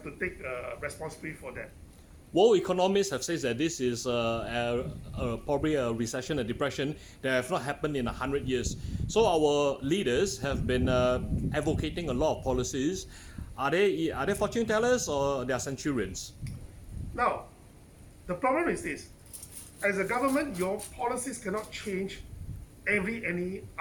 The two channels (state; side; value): identical; both; correlation 1.00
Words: to take responsibility for that. World economists have said that this is probably a recession, a depression that have not happened in 100 years. So our leaders have been advocating a lot of policies. Are they fortune tellers or they are centurions? Now, the problem is this: as a government, your policies cannot change any